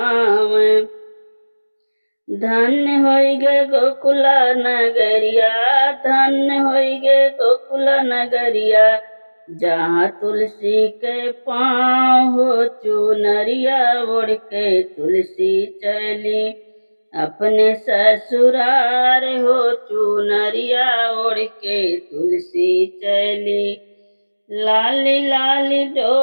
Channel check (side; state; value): both; inverted; correlation -1.00